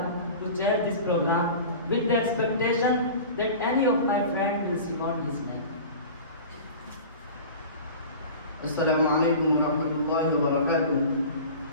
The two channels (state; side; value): inverted; both; correlation -0.37